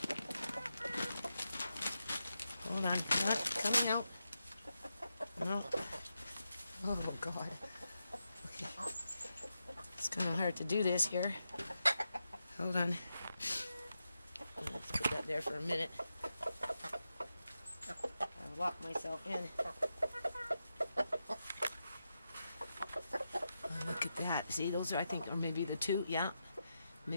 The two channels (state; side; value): inverted; both; correlation -0.87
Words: Hold on. Not coming out. No. Oh God. Okay. It's kind of hard to do this here. Hold on. Let's put that there for a minute. I'll lock myself in. Oh, look at that. See, those are, I think, or maybe the 2. Yeah.